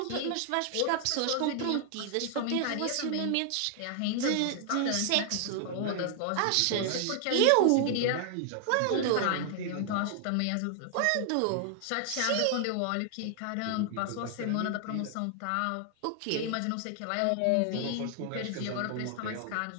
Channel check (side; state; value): both; different; correlation 0.00